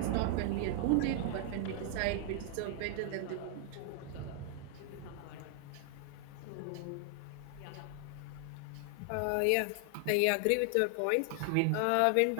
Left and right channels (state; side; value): different; both; correlation 0.00